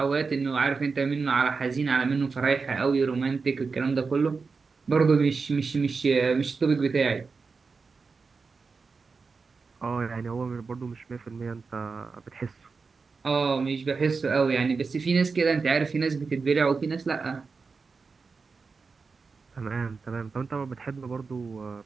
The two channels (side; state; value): left; quieter; 4.7 dB